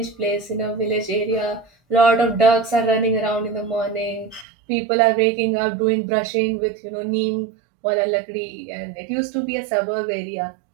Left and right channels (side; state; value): left; drops out; at 4.5 s